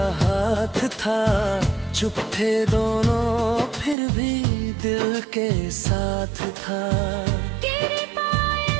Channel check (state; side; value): drops out; left; at 4.0 s